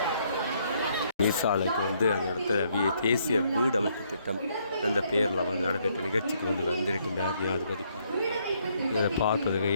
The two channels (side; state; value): both; inverted; correlation -0.71